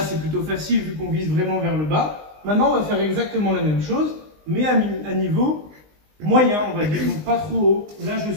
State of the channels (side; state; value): left; late; 20 ms